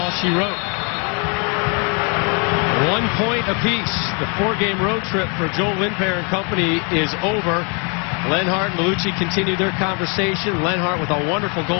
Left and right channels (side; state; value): right; quieter; 35.6 dB